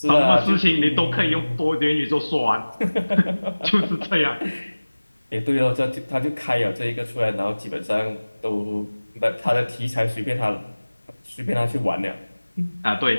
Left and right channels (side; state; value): both; inverted; correlation -1.00